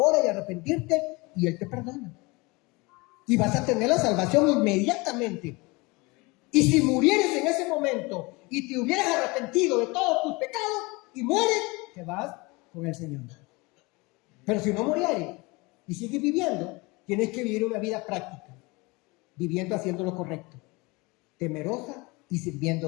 y arrepentirte y Él te perdona. Y vas a tener la salvación inmediatamente. Y si murieres en ese momento y te hubieras arrepentido de todos tus pecados y mueres, te vas con el Señor. Pero si no murieres y sigues viviendo, tienes que vivir una vida práctica, viviendo haciendo lo correcto, temerosa y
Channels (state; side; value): quieter; right; 25.1 dB